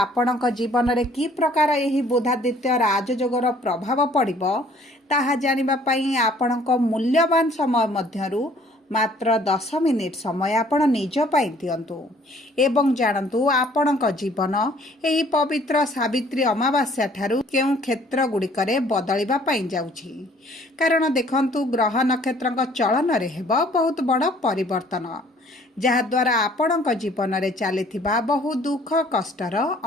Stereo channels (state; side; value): normal; both; correlation 0.57